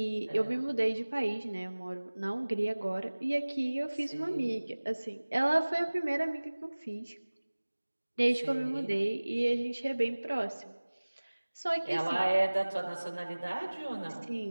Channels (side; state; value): both; inverted; correlation -1.00